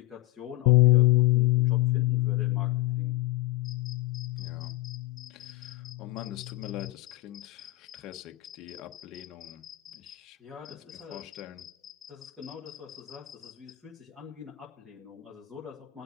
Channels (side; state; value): right; quieter; 18.6 dB